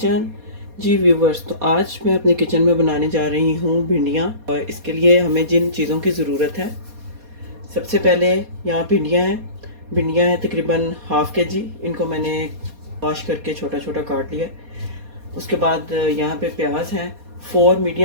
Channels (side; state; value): left; late; 4.2 ms